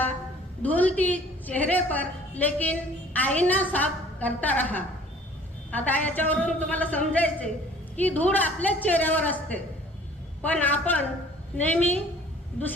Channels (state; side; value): normal; both; correlation 0.52